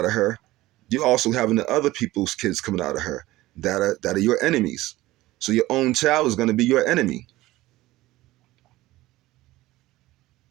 of her. You're also having the other people's kids coming out of her that are your enemies. So your own child is going to be your enemy.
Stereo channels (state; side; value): quieter; left; 17.6 dB